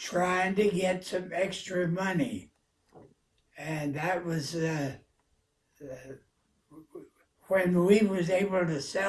to get some extra money. And that was when we was able to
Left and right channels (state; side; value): identical; both; correlation 1.00